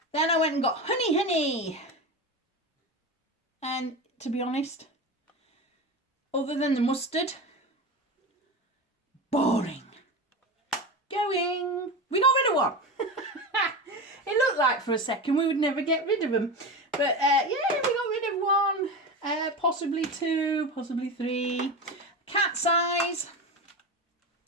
Then I went and got Honey. And to be honest, other than the mustard, boring. Going. We got rid of one. It looked like for a second we would never get rid of them. But yeah, we got rid of one. Possibly 2, possibly 3. Cat size.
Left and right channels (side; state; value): both; normal; correlation 0.24